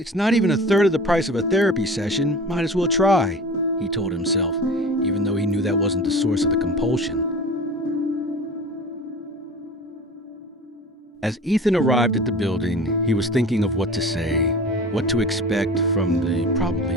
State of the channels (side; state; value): both; normal; correlation 0.38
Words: not even a third of the price of a therapy session, might as well try, he told himself, even though he knew that wasn't the source of the compulsion. As Ethan arrived at the building, he was thinking of what to say, what to expect from the probably